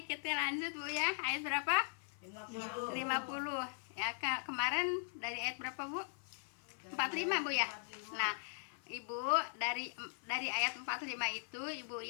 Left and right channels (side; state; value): right; silent; 51 dB below the other